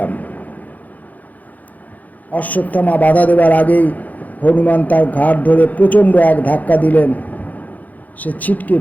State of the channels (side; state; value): right; late; 0.079 ms